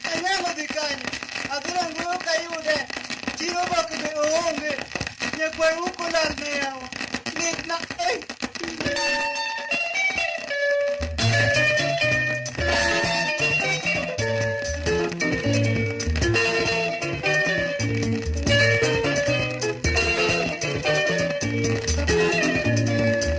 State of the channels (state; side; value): identical; both; correlation 1.00